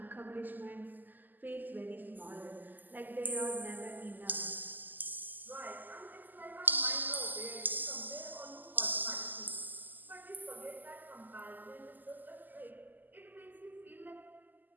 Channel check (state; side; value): late; left; 0.086 ms